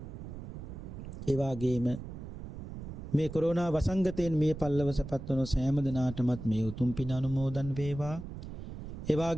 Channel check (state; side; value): noise; right; rumble, 10 dB below the sound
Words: ඒ වාගේම මේ කොරෝනා වසංගතයෙන් මිය පල්ලවසපත් වන සෑම දෙනාටමත් මේ උතුම් පින් අනුමෝදන් වේවා. ඒ